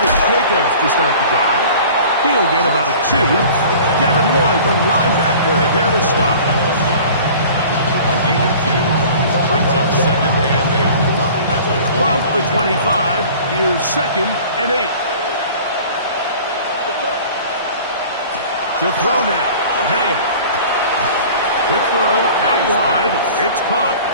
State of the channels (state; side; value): inverted; both; correlation -0.44